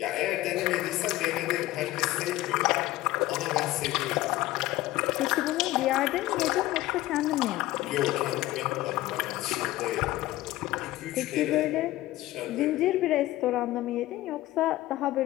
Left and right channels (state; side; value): quieter; right; 16.5 dB